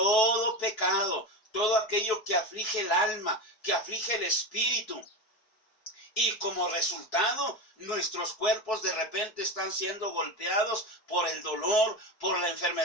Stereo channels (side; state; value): right; late; 4.6 ms